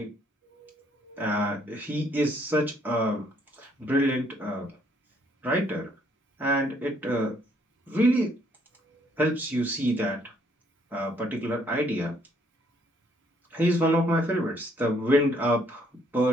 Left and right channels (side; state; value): both; normal; correlation 0.67